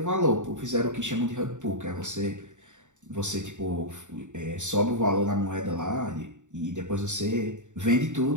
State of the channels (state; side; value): late; left; 0.85 ms